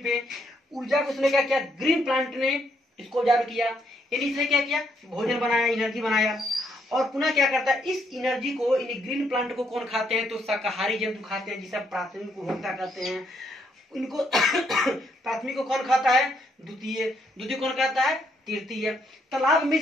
ऊर्जा को उसने क्या किया, ग्रीन प्लांट ने इसको ऑब्जर्व किया, यानी इसने क्या किया, भोजन बनाया, एनर्जी बनाया। और पुनः क्या करता है, इस एनर्जी को, इन ग्रीन प्लांट को कौन खाते हैं, तो शाकाहारी जंतु खाते हैं, जिसे प्राथमिक उपभोक्ता कहते हैं। इनको प्राथमिक को कौन खाता है, द्वितीय, द्वितीय कौन खाता है, तृतीय। तालाब में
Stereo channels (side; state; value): both; normal; correlation 0.73